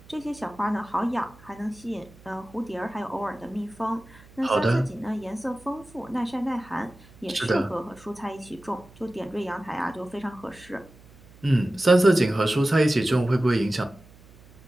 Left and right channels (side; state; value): right; noise; hum, 24 dB below the sound